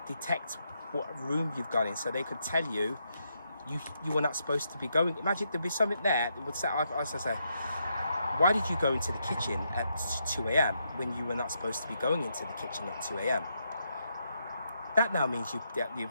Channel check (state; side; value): inverted; both; correlation -0.80